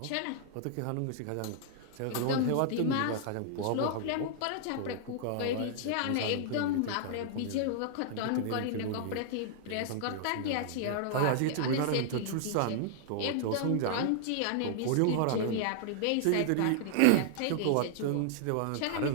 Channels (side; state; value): both; different; correlation -0.01